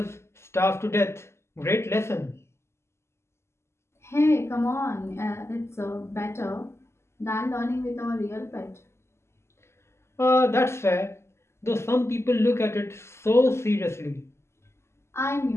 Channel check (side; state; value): right; late; 0.13 ms